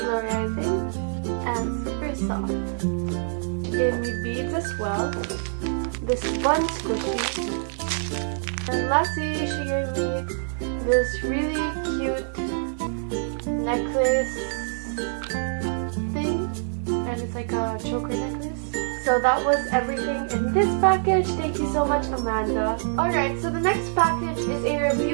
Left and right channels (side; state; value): left; silent; 61 dB below the other